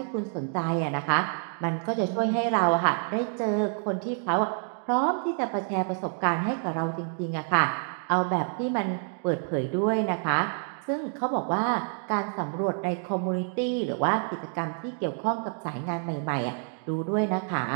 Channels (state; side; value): silent; left; 59 dB below the other